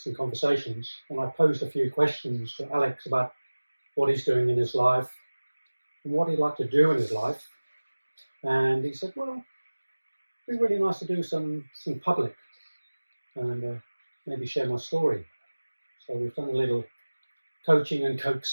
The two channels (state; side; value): inverted; both; correlation -1.00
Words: conversations, and I posed a few questions to Alex about what he's doing in his life and what he'd like to do in his life. And he said, well, it'd be really nice to do some public and maybe share my story. So we've done a little coaching and